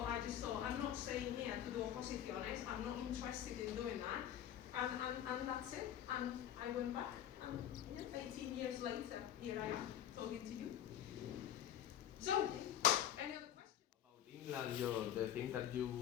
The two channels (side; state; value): right; quieter; 10.7 dB